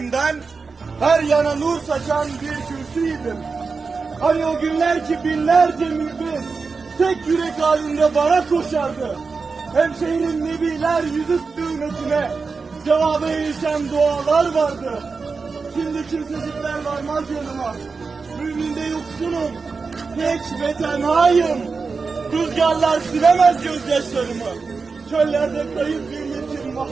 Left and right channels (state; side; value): quieter; left; 4.6 dB